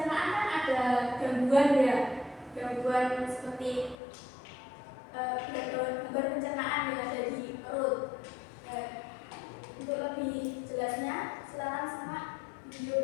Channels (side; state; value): right; drops out; at 4.0 s